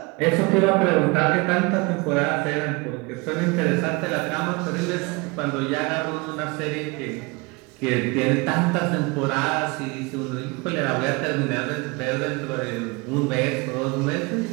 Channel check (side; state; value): left; quieter; 26.5 dB